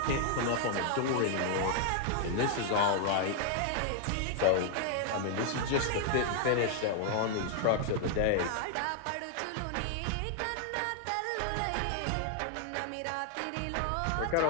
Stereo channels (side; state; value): both; different; correlation 0.00